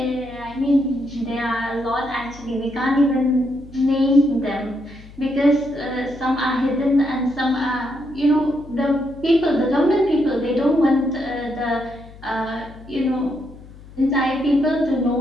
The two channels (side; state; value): left; noise; hum, 19 dB below the sound